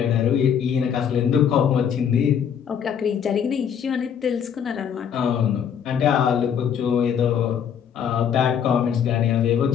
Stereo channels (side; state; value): right; quieter; 8.1 dB